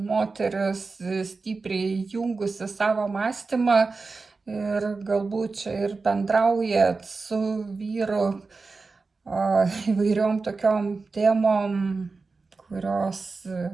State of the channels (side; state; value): left; quieter; 4.1 dB